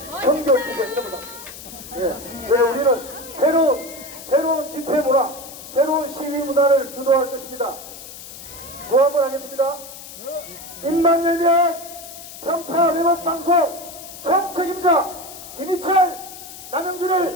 청결 투쟁 이런 거 닦습니다. 예. 그래서 우리는 새로운 집회 문화, 새로운 시위 문화를 주도할 것입니다. 뭐 한번 하겠습니다. 입만 열면 평파 왜곡 방송 총책임자 김희철,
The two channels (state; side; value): noise; left; hiss, 14 dB below the sound